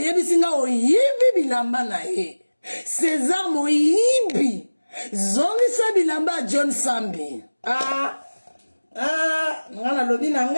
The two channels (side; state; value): both; inverted; correlation -1.00